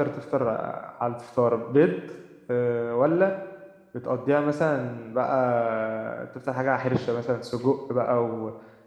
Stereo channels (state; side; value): identical; both; correlation 1.00